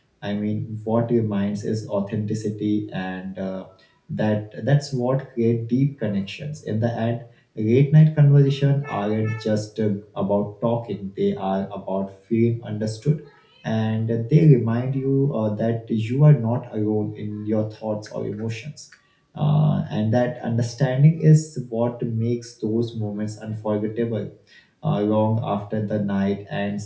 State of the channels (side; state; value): both; identical; correlation 1.00